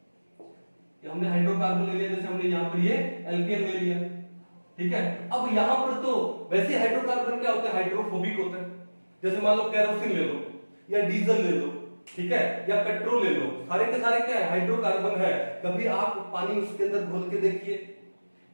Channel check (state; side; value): inverted; both; correlation -1.00